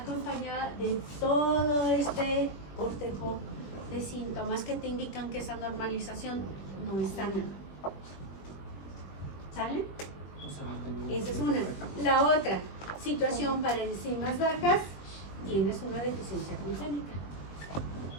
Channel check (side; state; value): right; late; 21 ms